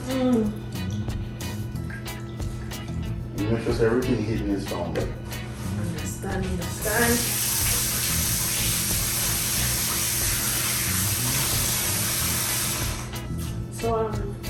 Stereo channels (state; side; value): identical; both; correlation 1.00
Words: You make sure say everything hidden is found. Understand. So,